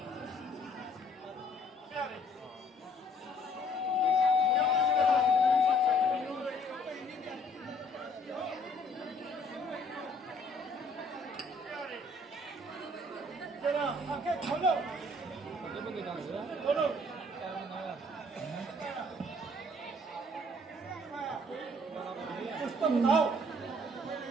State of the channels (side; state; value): both; normal; correlation 0.60